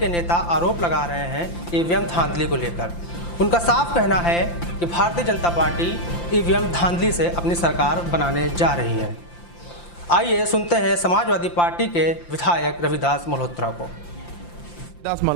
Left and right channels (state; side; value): late; right; 5.8 ms